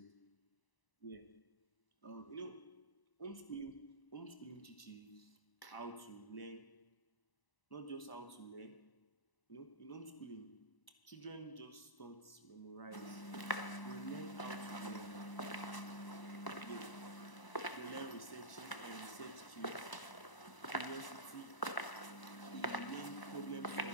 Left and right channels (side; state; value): right; late; 1.0 ms